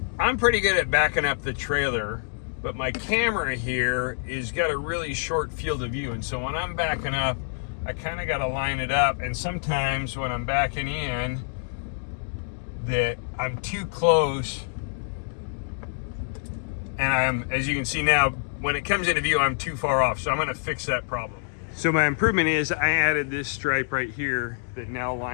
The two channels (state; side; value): silent; right; digital silence